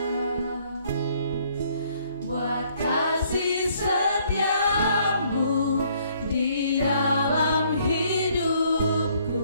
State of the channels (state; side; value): inverted; both; correlation -0.64